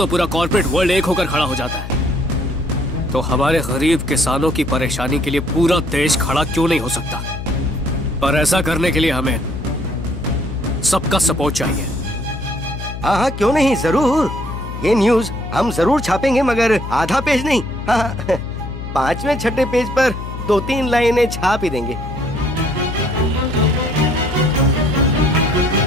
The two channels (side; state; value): left; noise; hum, 8 dB below the sound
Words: पूरा कॉर्पोरेट वर्ल्ड एक होकर खड़ा हो जाता है। तो हमारे गरीब किसानों की परेशानी के लिए पूरा देश खड़ा क्यों नहीं हो सकता? पर ऐसा करने के लिए हमें सबका सपोर्ट चाहिए। हाँ हाँ, क्यों नहीं, जरूर। ये न्यूज हम जरूर छापेंगे, मगर आधा पेज नहीं। हाँ, 5वें 6ठे पेज पर 2-3 लाइनें छाप ही देंगे।